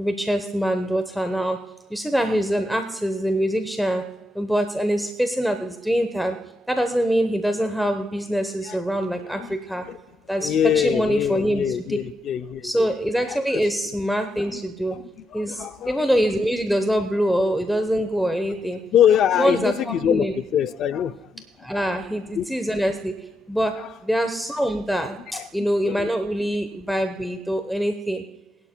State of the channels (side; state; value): both; normal; correlation 0.83